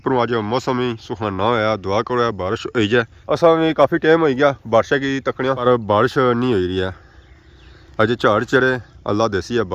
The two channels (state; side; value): identical; both; correlation 1.00